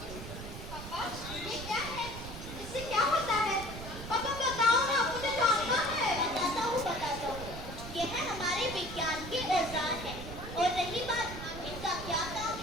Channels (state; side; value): noise; right; rumble, 10 dB below the sound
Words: पापा, ये क्या है? इससे क्या होता है? पापा बताओ ना, मुझे जानना है। बताता हूँ। ये है हमारे विज्ञान के औजार हैं। और रही बात इनका क्या काम